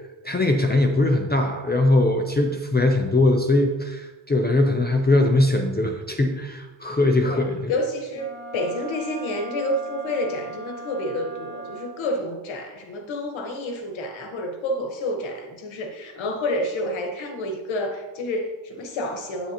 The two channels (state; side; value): normal; both; correlation 0.58